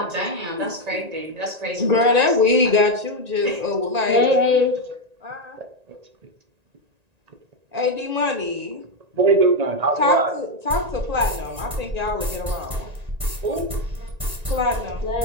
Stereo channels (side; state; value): left; late; 1.9 ms